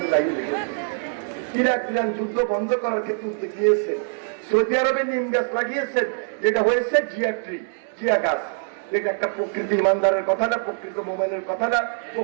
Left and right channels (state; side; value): silent; left; 63 dB below the other